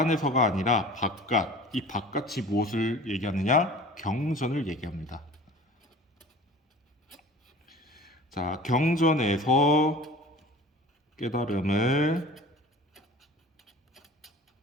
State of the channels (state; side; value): normal; both; correlation 0.41